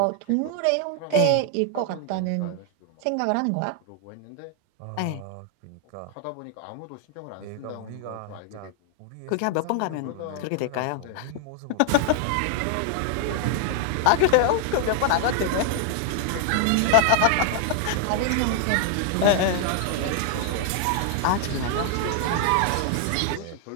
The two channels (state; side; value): different; both; correlation 0.00